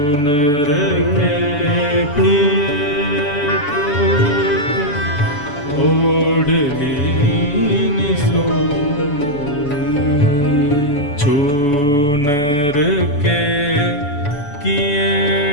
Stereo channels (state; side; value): late; right; 7.1 ms